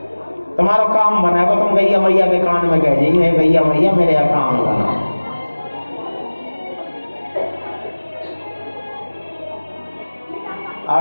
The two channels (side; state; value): both; inverted; correlation -1.00